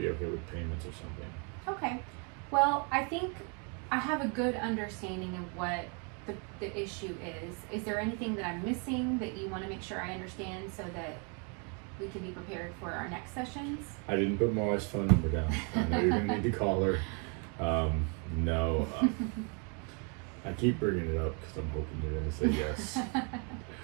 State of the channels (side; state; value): left; quieter; 35.5 dB